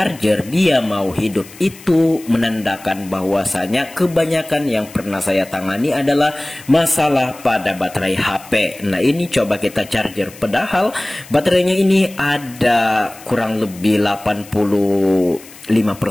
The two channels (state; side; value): noise; left; hiss, 20 dB below the sound